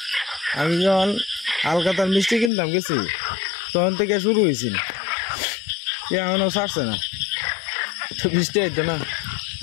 আমি যখন হালকাতার মিষ্টি কিনতাম গেছি তখন থেকে শুরু হয়েছিল এখনো ছাড়ছে না তো বৃষ্টি আইতো না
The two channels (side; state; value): right; drops out; at 2.5 s